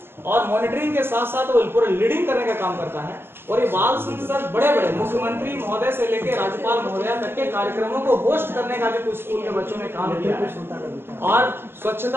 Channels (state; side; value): late; left; 0.11 ms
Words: और मॉनिटरिंग के साथ साथ वो पूरा लीडिंग करने का काम करता है। और ये बाल संसद बड़े बड़े मुख्यमंत्री महोदय से लेकर राज्यपाल महोदय तक के कार्यक्रमों को होस्ट करने का भी कुछ स्कूल के बच्चों ने काम किया है। और